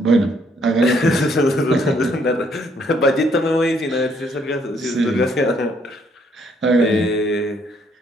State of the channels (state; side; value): normal; both; correlation 0.68